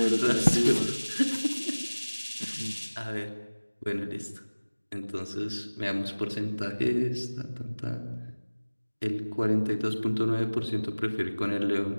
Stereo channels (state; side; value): inverted; both; correlation -1.00